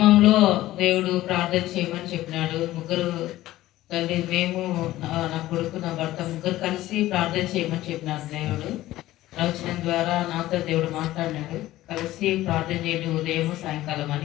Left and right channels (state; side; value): quieter; right; 15.7 dB